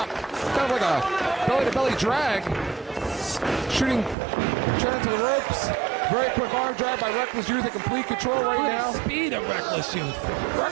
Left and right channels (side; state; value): left; drops out; at 4.2 s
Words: Kind of like a belly-to-belly drag. Shooting Trent into the ropes. Very quick arm drag by Reckless Youth in complete control right now. The speed of Reckless Youth.